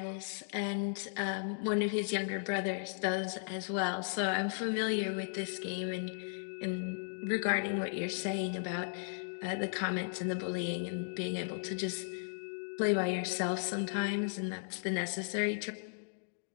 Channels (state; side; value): silent; right; digital silence